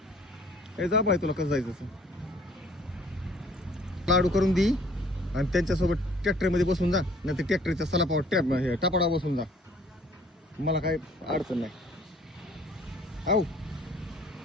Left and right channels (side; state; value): both; normal; correlation 0.56